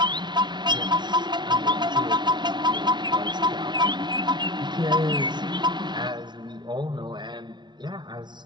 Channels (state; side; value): late; left; 0.21 ms